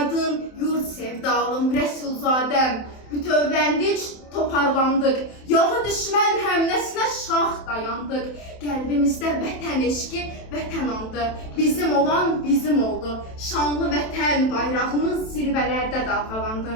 yurt sevdalım, Rəsulzadəm. Bütövləndik, toparlandıq. Yağı düşmən həmləsinə şah dayandıq. Qəlbimizdə vətən eşqi, vətən andı. Bizim olan bizim oldu. Şanlı vətən bayrağımız zirvələrdə dalğalandı.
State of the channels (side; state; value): right; late; 27 ms